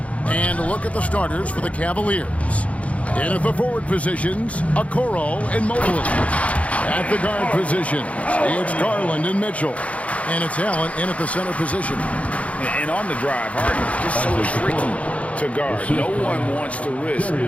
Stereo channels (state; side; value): late; right; 0.065 ms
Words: And look at the starters for the Cavaliers. In at the forward positions, Okoro and Mobley. At the guard positions, it's Garland and Mitchell. And it's Allen in at the center position. And on the drive, Harden just so tricky to guard. No one wants to risk